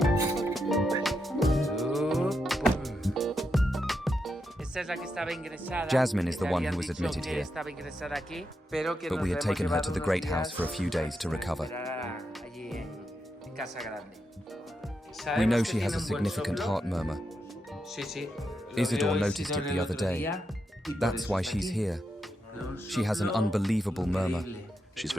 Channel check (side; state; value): both; normal; correlation 0.84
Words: Jasmine is the one who was admitted here, but we had taken her to the Great House for a few days to recover. We know she has a significant heart murmur. Isidore noticed it the other day. That's why she's here. She has an unbelievable murmur. She's